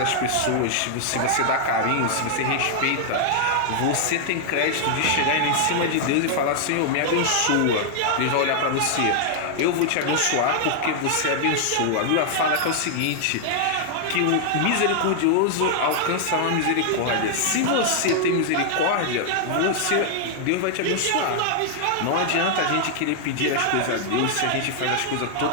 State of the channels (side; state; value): both; different; correlation -0.01